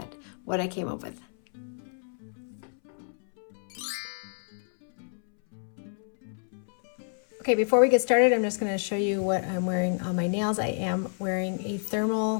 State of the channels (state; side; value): silent; right; 59 dB below the other